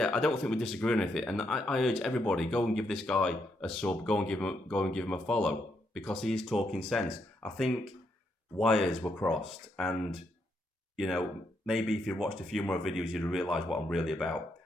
I don't think we disagree on anything. And I urge everybody, go and give this guy a sub, go and give him a follow, because he is talking sense. I think wires were crossed, and maybe if you watched a few more videos, you'd realise what I'm really about.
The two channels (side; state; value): both; normal; correlation 0.78